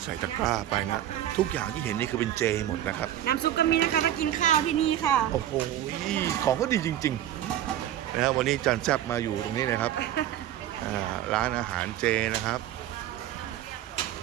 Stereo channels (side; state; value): left; quieter; 12.0 dB